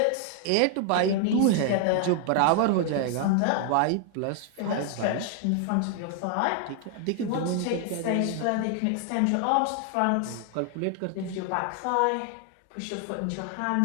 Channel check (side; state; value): both; different; correlation 0.00